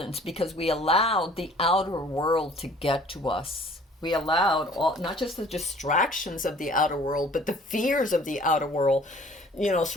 because we allowed the outer world to get to us. We allowed not just the distractions of the outer world, but the fears of the outer world,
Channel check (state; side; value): normal; both; correlation 0.53